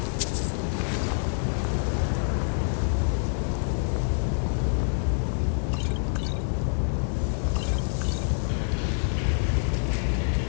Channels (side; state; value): right; silent; 61 dB below the other